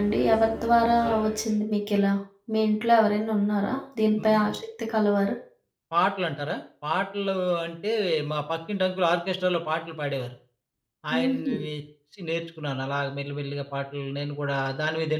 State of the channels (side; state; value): both; identical; correlation 1.00